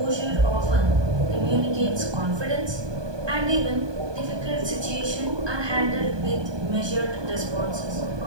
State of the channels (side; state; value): left; late; 1.2 ms